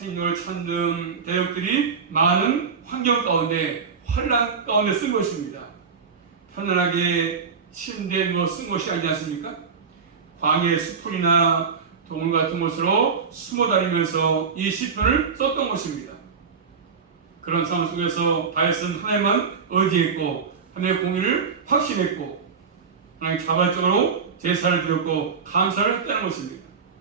천등, 대역들이 많은 환경 가운데, 환란 가운데 쓴 것입니다. 편안하게 침대에 누워 쓴 것이 아니지 않습니까? 광야의 수풀이나 동굴 같은 곳으로 숨어 다니면서 이 시편을 썼던 것입니다. 그런 상황 속에서 다윗은 하나님만 의지했고 하나님의 공의를 확신했고 하나님 자발적으로 제사를 드렸고 감사를 했다는 것입니다.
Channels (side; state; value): left; quieter; 5.7 dB